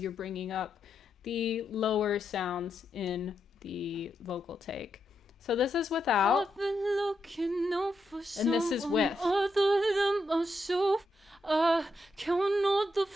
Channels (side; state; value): both; normal; correlation 0.83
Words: bringing up the lower sounds in the vocal take. So this is without, I've been looking out for and this is with. Other than myself, I count all the